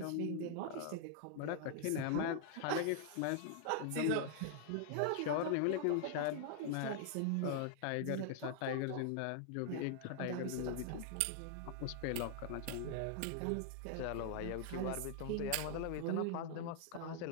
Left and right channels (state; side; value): different; both; correlation 0.00